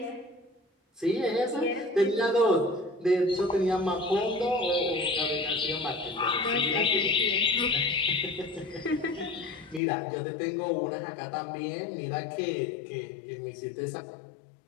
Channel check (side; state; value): right; drops out; at 9.8 s